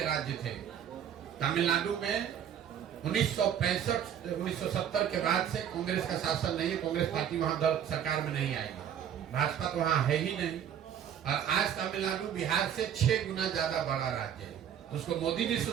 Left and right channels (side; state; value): left; quieter; 9.2 dB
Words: राज्य थे। तमिलनाडु में 1970 के बाद से कांग्रेस का शासन नहीं है, कांग्रेस पार्टी वहां सरकार में नहीं आएगी, भाजपा तो वहां है ही नहीं। और आज तमिलनाडु बिहार से 6 गुना ज्यादा बड़ा राज्य है। तो उसको मोदी जी